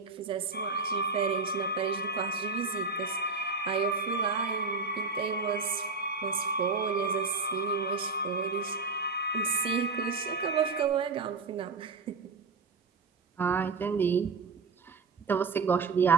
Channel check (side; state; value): left; quieter; 4.2 dB